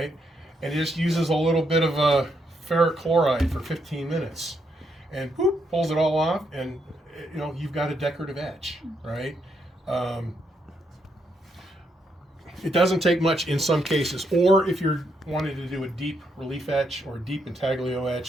and he just uses a little bit of ferric chloride for 15 minutes, and boop, pulls it all off, and you've got a decorative etch, right? It doesn't take much in some cases, or if you're wanting to do a deep relief etch or a deep intaglio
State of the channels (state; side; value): normal; both; correlation 0.78